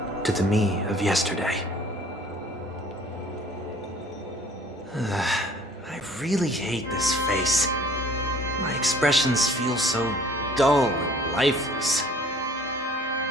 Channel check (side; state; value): both; normal; correlation 0.53